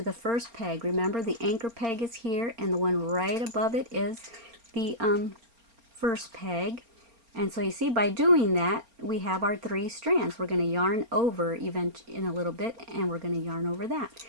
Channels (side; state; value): left; late; 4.3 ms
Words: the first peg. Remember, the anchor peg is here, and the one right above it is the first peg. And so you see, by doing that, we have our 3 strands. We're going to yarn over even in a little bit, and we're going to yarn over that.